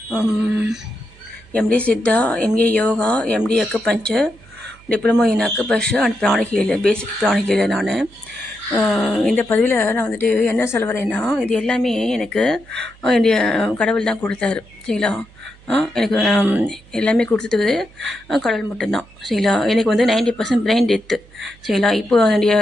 MD Siddha, MA yoga, MD acupuncture, diploma in acupuncture and pranic healer, basic pranic healer. நான் இந்த பதிவில் நான் வந்துட்டு என்ன சொல்ல வரேன்னா, இது எல்லாமே எனக்கு என்னுடைய கடவுள் தான் கொடுத்தாரு. சரிங்களா? எனக்கு எல்லாமே கொடுத்தது கடவுள் மட்டும்தான். சரிங்களா? எனக்கு வந்து 90% பிரெயின் டெத்து. சரிங்களா? இப்போ என்னுடைய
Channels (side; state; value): right; noise; hum, 25 dB below the sound